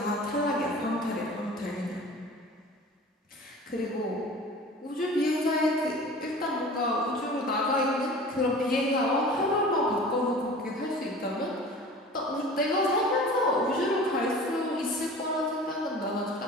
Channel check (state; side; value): normal; both; correlation 0.41